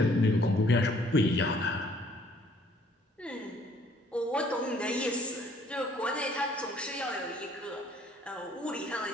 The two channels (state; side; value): normal; both; correlation 0.60